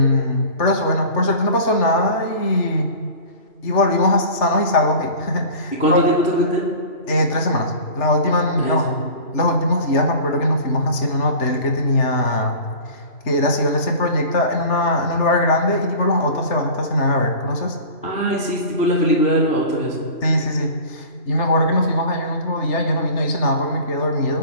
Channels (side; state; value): right; late; 3.3 ms